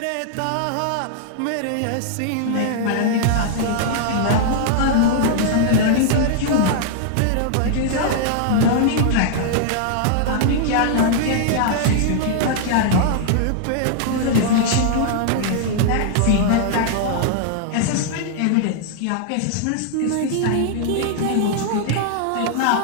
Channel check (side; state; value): both; different; correlation -0.01